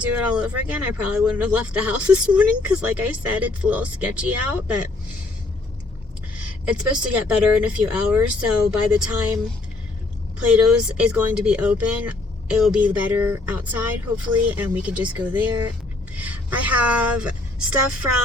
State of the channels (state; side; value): quieter; right; 3.1 dB